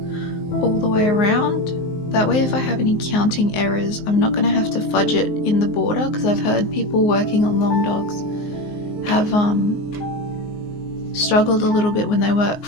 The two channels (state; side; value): late; right; 19 ms